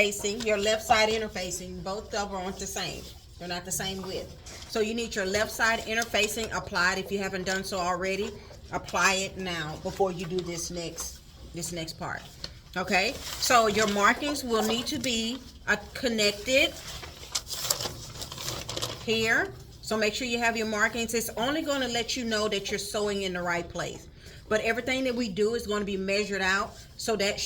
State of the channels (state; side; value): identical; both; correlation 1.00